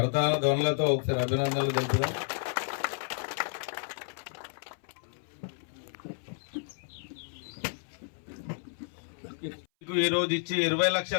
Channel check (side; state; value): right; silent; 57 dB below the other